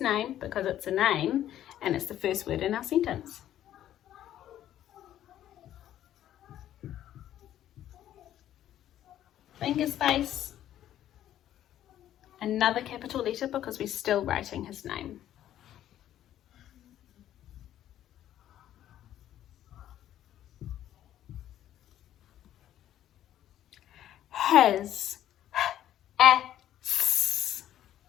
name, because it's a name, and it's the first word in our sentence. Finger space. Another capital letter because we're still writing his name. Has.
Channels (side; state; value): right; quieter; 11.9 dB